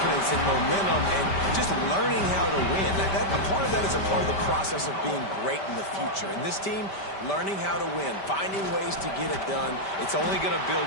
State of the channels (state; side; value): late; right; 5.1 ms